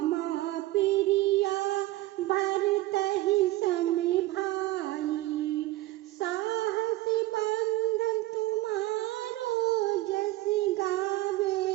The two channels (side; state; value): left; quieter; 17.2 dB